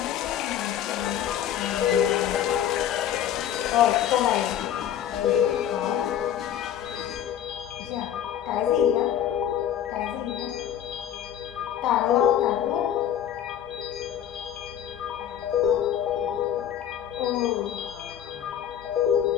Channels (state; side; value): quieter; right; 10.3 dB